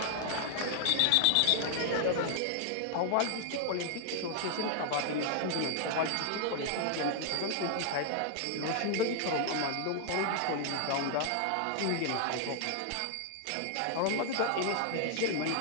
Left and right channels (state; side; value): different; both; correlation 0.00